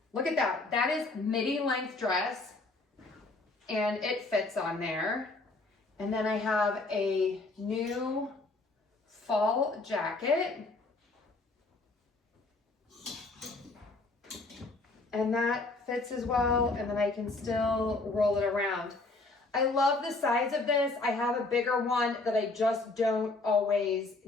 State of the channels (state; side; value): quieter; right; 3.3 dB